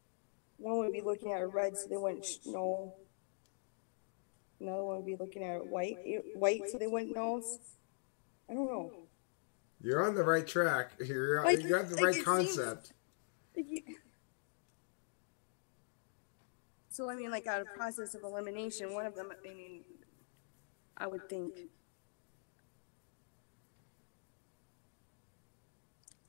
One would be looking at a red, so they wouldn't know. another one would be looking at white, so they wouldn't know. I don't know. You're on the right track. You got the right concept. So, I mean, like, out of process of elimination, one of them, I mean, I would think,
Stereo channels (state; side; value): silent; right; digital silence